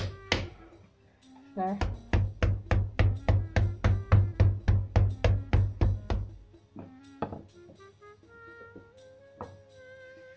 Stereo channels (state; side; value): identical; both; correlation 1.00